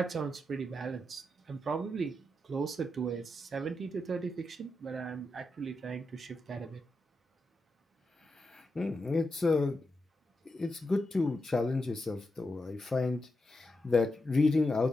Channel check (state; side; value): normal; both; correlation 0.87